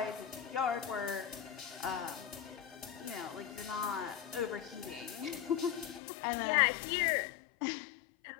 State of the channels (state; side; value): drops out; right; at 6.0 s